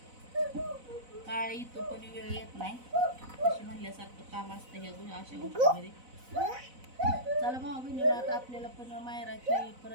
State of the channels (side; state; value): left; late; 4.0 ms